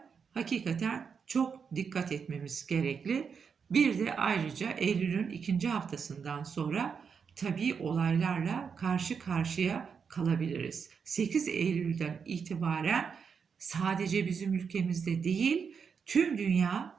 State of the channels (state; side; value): quieter; left; 6.2 dB